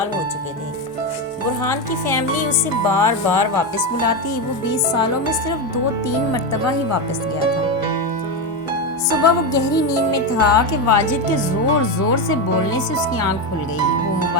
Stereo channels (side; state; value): both; normal; correlation 0.12